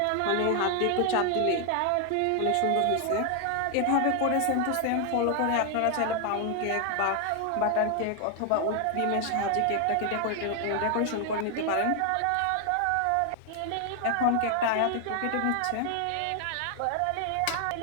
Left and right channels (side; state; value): both; different; correlation 0.00